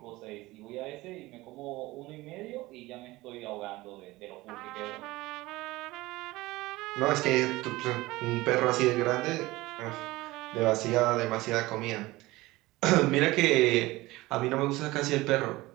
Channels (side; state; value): left; quieter; 19.6 dB